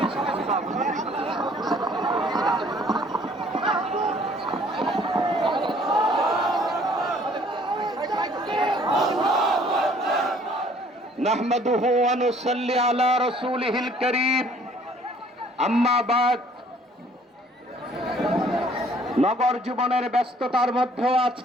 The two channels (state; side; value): normal; both; correlation 0.58